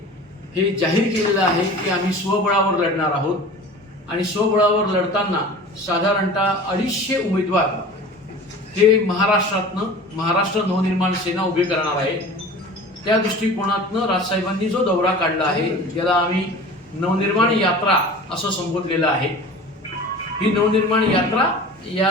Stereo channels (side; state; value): both; normal; correlation 0.39